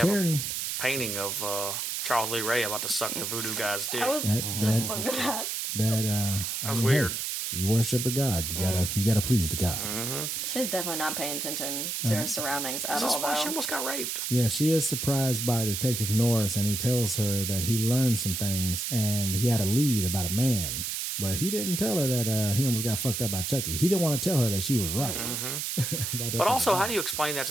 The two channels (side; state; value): right; noise; hiss, 2 dB below the sound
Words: Karen... have a painting of Charles Lee Ray about to suck the voodoo guy's dick. I was just looking at that was weird. Hey, you worship the god. You gotta please the god. She's definitely not paying attention to her surroundings at This is all, why she though. almost got raped. Yeah, she is surprised by Detective Norris, and he tells her that he learned some things, and he had a lead about a man. But he didn't tell her that he almost got fucked up by Chucky. He didn't want to tell her that she was right. But also, how do you explain that